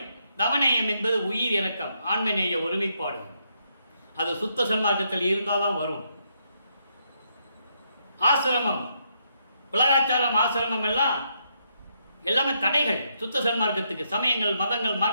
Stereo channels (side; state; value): both; inverted; correlation -0.77